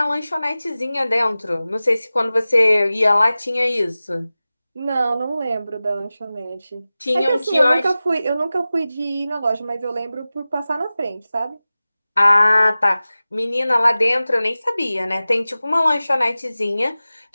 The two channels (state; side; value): inverted; both; correlation -0.96